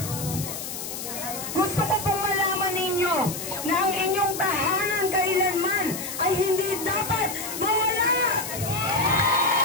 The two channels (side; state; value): left; noise; hiss, 7 dB below the sound